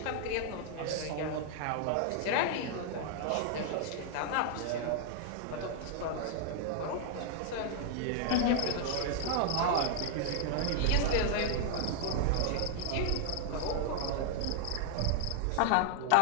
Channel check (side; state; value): both; different; correlation 0.00